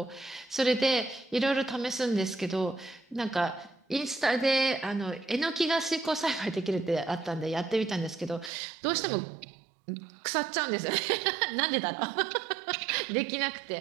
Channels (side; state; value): left; drops out; at 8.5 s